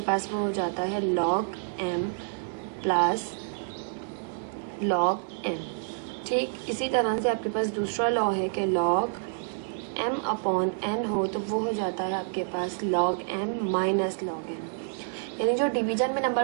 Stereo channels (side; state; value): left; silent; 59 dB below the other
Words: पास वो हो जाता है log m plus log n। ठीक, इसी तरह से आपके पास दूसरा लॉ है कि लॉग m/n हो, तो वो हो जाता है आपके पास log m minus log n। यानी जो डिवीजन में